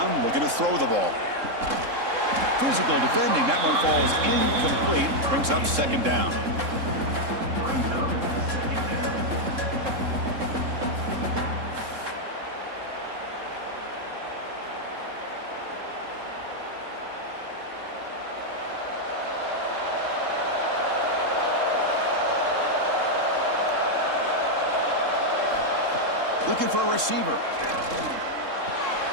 looking to throw the ball. Physical defending. That one falls incomplete. Brings up 2nd down. Looking for a receiver.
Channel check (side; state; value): left; late; 3.7 ms